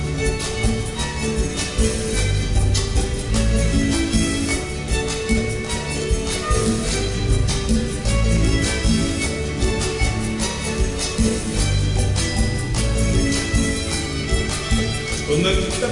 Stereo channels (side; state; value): both; identical; correlation 1.00